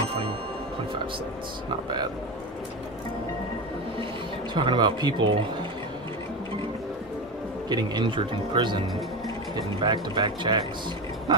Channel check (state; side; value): normal; both; correlation 0.21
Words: Not bad. Talking about people getting injured in prison, getting back-to-back checks.